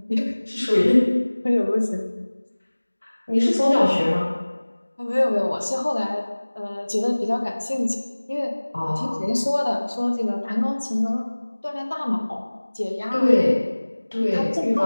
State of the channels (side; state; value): both; inverted; correlation -1.00